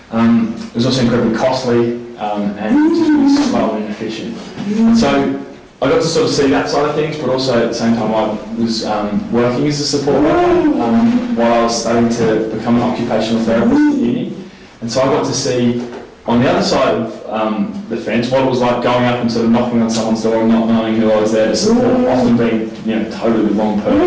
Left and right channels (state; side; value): identical; both; correlation 1.00